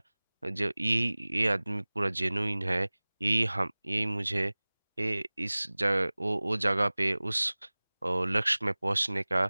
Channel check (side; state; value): both; inverted; correlation -1.00